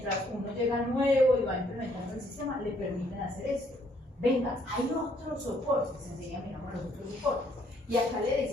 uno llega nuevo y va implementando el sistema, le permiten hacer esto. Venga, hay otros soportes, enseguida miramos los otros soportes. Y acá le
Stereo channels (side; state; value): both; normal; correlation 0.67